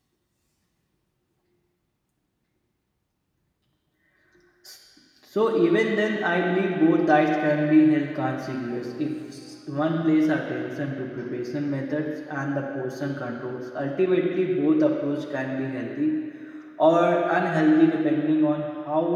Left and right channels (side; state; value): both; identical; correlation 1.00